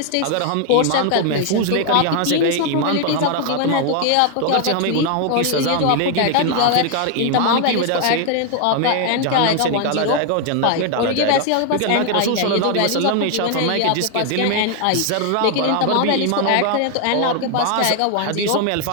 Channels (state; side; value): different; both; correlation 0.00